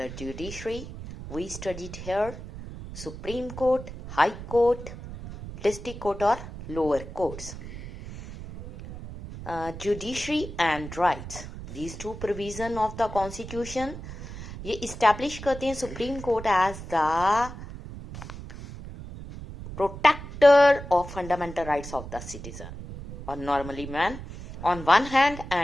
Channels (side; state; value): right; noise; rumble, 11 dB below the sound